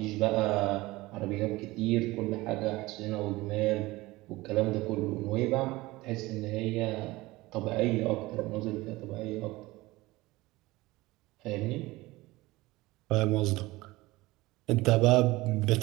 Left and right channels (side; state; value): left; quieter; 20.0 dB